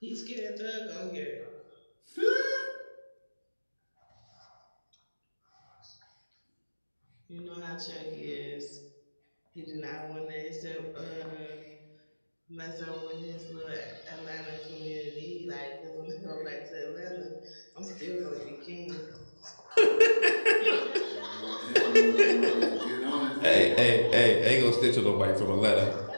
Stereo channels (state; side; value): inverted; both; correlation -1.00